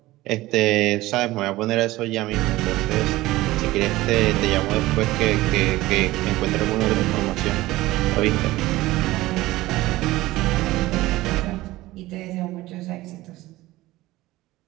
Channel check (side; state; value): left; quieter; 17.9 dB